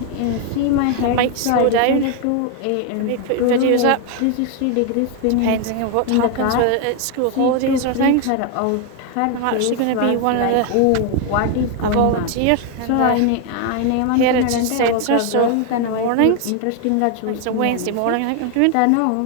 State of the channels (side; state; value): both; different; correlation 0.01